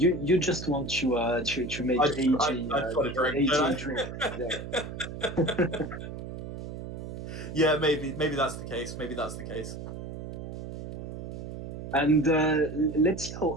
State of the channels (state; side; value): noise; right; hum, 9 dB below the sound